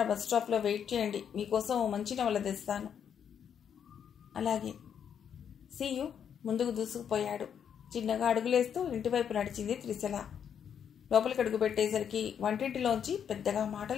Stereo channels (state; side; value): quieter; right; 8.2 dB